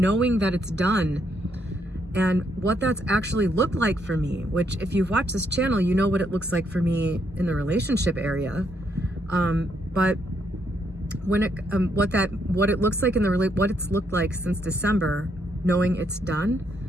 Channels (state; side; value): normal; both; correlation 0.75